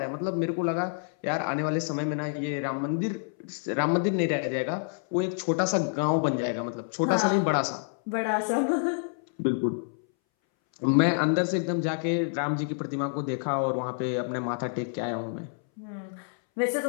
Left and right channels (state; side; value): silent; right; 59 dB below the other